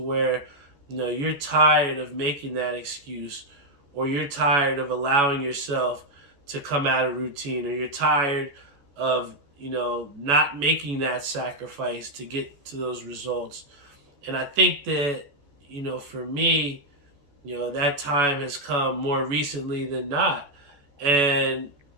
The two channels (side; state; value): left; late; 14 ms